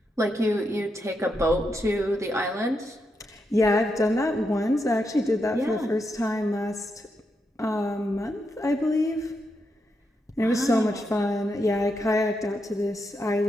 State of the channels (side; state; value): both; normal; correlation 0.83